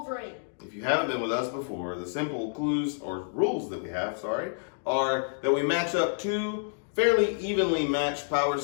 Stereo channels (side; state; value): right; silent; digital silence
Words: If you haven't been with us before, the simple clues or rules that we have, are that we match up two fairly evenly matched power